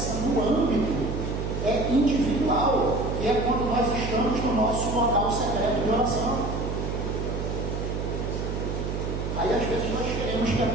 no âmbito individual, que é quando nós estamos no nosso local secreto de oração. Aí às vezes nós queremos que a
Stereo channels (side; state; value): right; noise; hum, 3 dB below the sound